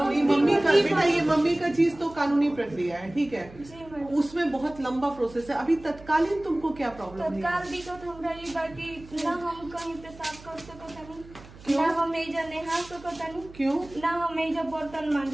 ये मम्मी का बेटा, ये मम्मी का चीज तो कानूनी प्रक्रिया है, ठीक है। जी मैडम। उसमें बहुत लंबा प्रोसेस है। अभी तत्कालीन तुमको क्या प्रॉब्लम है? तत्काल दिक्कत हमरा ये बाकी ना हम कहीं पेशाब कर सकतानी, क्यों? ना हम एजा नहा सकतानी, क्यों? ना हम एजा बर्तन मान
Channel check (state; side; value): noise; right; hum, 20 dB below the sound